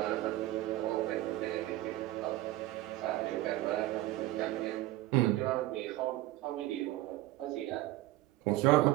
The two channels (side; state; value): left; quieter; 16.4 dB